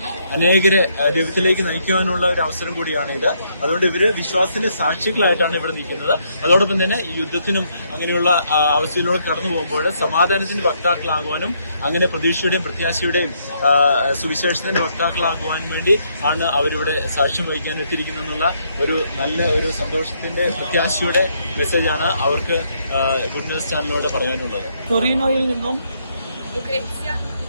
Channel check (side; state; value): both; inverted; correlation -0.73